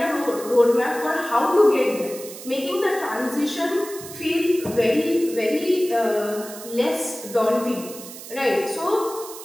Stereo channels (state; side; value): noise; right; hiss, 14 dB below the sound